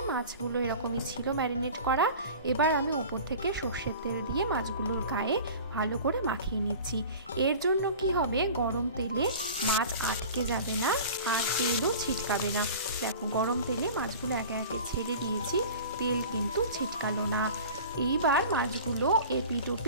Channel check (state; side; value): inverted; both; correlation -0.40